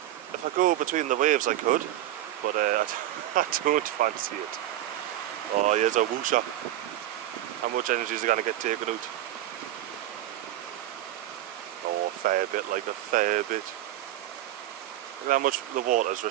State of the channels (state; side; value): quieter; left; 13.4 dB